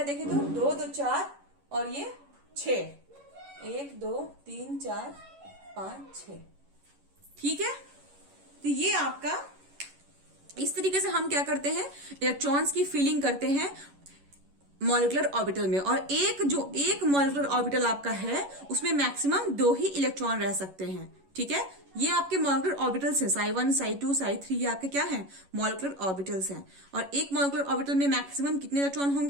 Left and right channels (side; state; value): left; late; 11 ms